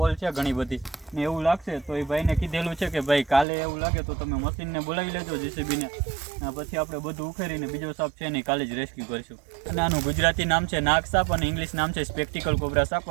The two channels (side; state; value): left; drops out; at 3.5 s